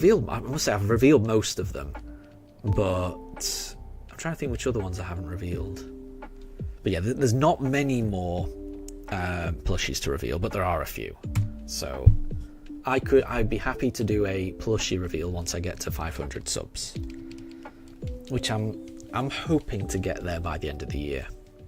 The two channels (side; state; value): both; identical; correlation 1.00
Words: must say I've revealed most of them, but I'm trying to think which other ones I haven't revealed. But yeah, there's not many more plushies to reveal, but there are a few. So I'd be happy to do a plushie reveal once I get to 500 subs, which I'm hoping to get there by the end of the year.